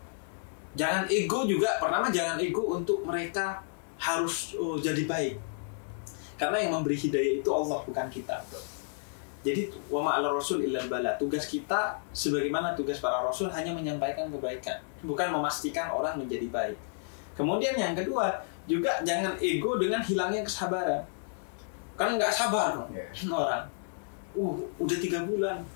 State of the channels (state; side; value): silent; right; digital silence